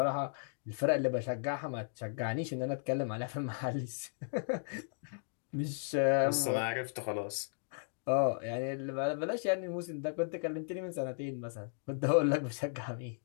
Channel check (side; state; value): right; silent; digital silence